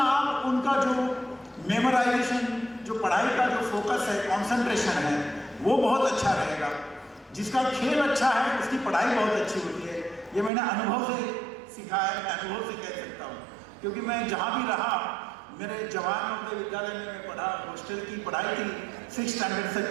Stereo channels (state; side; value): drops out; left; at 10.5 s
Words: आप उनका जो मेमोराइजेशन, जो पढ़ाई का जो फोकस है, कंसंट्रेशन है, वो बहुत अच्छा रहेगा। जिसका खेल अच्छा है उसकी पढ़ाई बहुत अच्छी होती है। ये मैंने अनुभव से सीखा है, मैं अनुभव से कह सकता हूँ, क्योंकि मैं जहाँ भी रहा, मेरे जवाहर नवोदय विद्यालय में मैं पढ़ा, हॉस्टल की पढ़ाई थी 6th स्टैंडर्ड से